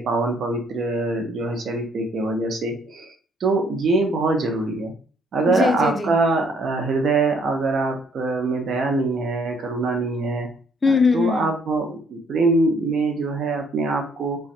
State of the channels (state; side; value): normal; both; correlation 0.65